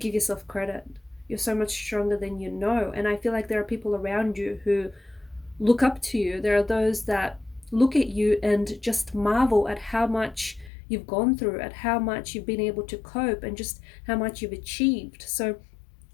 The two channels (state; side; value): drops out; right; at 10.7 s